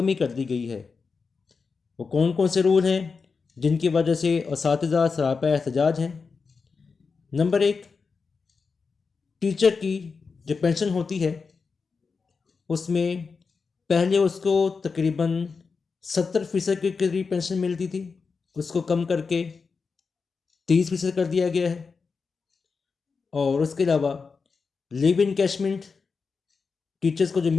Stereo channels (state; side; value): quieter; right; 4.9 dB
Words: کر دی گئی ہے۔ وہ کون کون سے رول ہیں جن کی وجہ سے اساتذہ سراپا احتجاج ہیں؟ نمبر 1، ٹیچر کی جو پینشن ہوتی ہے اس میں پہلے اس کو تقریباً 70% کے قریب پینشن ملتی تھی، اس کو کم کر کے 30% کر دیا گیا ہے۔ اور اس کے علاوہ لیو انکیشمنٹ ٹیچرز کو جو